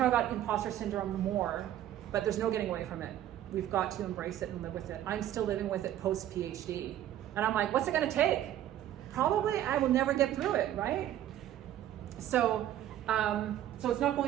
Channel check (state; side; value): quieter; left; 12.1 dB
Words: imposter syndrome more, but there's no getting away from it. We've got to embrace it and live with it. I'm still living with it post-PhD. And I'm like, what's it gonna take? Probably I will never get through it, right? So it's not